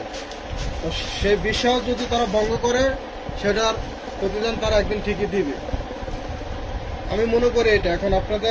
তো সেই বিশ্বাস যদি তারা ভঙ্গ করে, সেটার প্রতিদান তারা একদিন ঠিকই দিবে। আমি মনে করি এটা। এখন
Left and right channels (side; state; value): both; identical; correlation 1.00